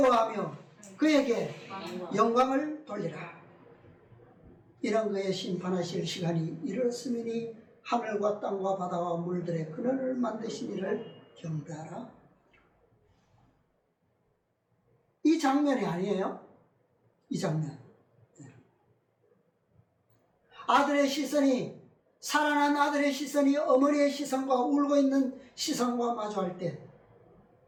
그에게 영광을 돌리라. 이런 그의 심판하실 시간이 이르렀으니 하늘과 땅과 바다와 물들의 근원을 만드신 이를 경배하라. 이 장면이 아니에요? 이 장면. 아들의 시선이, 살아난 아들의 시선이 어머니의 시선과 울고 있는 시선과 마주할 때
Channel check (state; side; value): identical; both; correlation 1.00